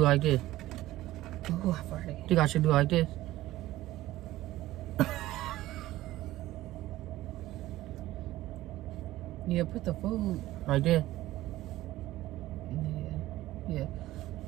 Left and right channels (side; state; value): left; quieter; 16.0 dB